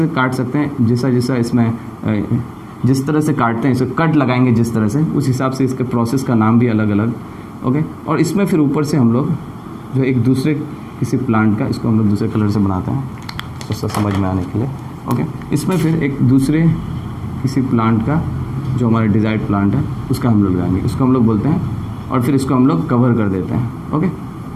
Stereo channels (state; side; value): identical; both; correlation 1.00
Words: काट सकते हैं, जैसा इसमें जिस तरह से काटते हैं, इसे कट लगाएंगे जिस तरह से, उस हिसाब से इसके प्रोसेस का नाम भी अलग अलग। ओके, और इसमें फिर ऊपर से हम लोग जो एक दूसरे किसी प्लांट का, इसको हम लोग दूसरे कलर से बनाते हैं तो समझ में आने के लिए। ओके, इसमें फिर एक दूसरे किसी प्लांट का जो हमारा डिजायर्ड प्लांट है उसका हम लोग लगाएंगे, इसको हम लोग बोलते हैं, और फिर इसको हम लोग कवर कर देते हैं। ओके,